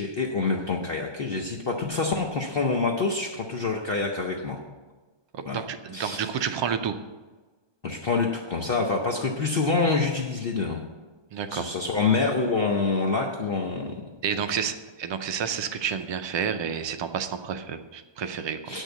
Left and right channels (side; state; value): left; late; 1.2 ms